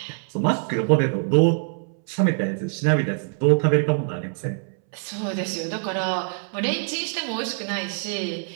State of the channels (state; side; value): silent; left; 62 dB below the other